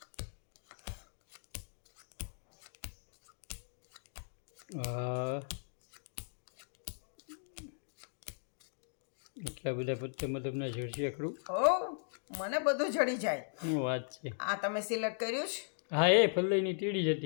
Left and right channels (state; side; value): silent; right; digital silence